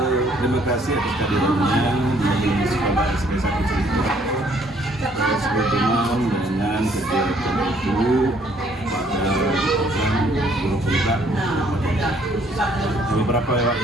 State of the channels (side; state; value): both; normal; correlation 0.64